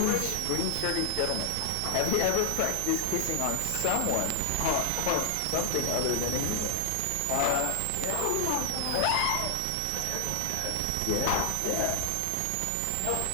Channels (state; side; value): different; both; correlation 0.00